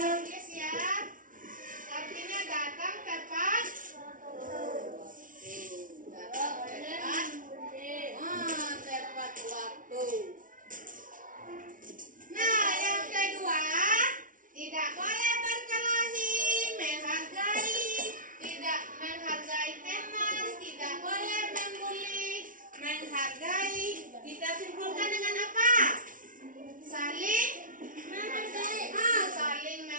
tulis ya. Artinya datang tepat. Tepat waktu. Nah, yang kedua, tidak boleh berkelahi, menghargai, tidak menghargai teman, tidak boleh membuli, menghargai. Kita simpulkan dengan apa? Saling menghargai. Saling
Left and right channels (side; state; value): left; late; 0.38 ms